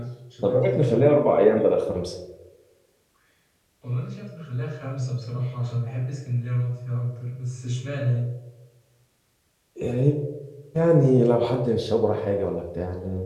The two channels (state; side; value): identical; both; correlation 1.00